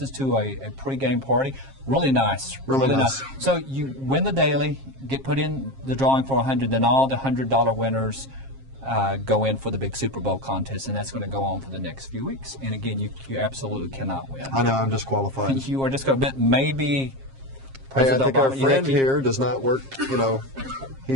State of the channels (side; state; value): left; late; 7.5 ms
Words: to a pre-game party. Really nice. Really nice. So you win the daily, get put in the drawing for 100, then all the $100 winners go in for the big Super Bowl contest, and that's going to go on for the next few weeks. And again, you absolutely cannot win. I know, I'm disqualified. You are just going to bet maybe. Hey, I President think our Obama, you friend think he- here does not work, you know,